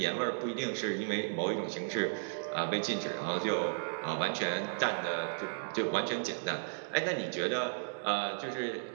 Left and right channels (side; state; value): left; silent; digital silence